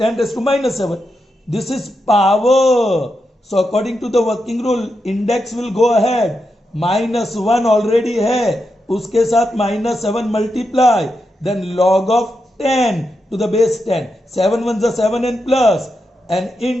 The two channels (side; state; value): both; normal; correlation 0.86